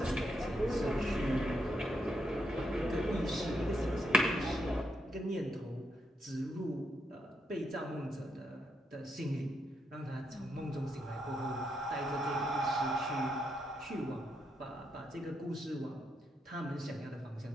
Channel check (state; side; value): normal; both; correlation 0.80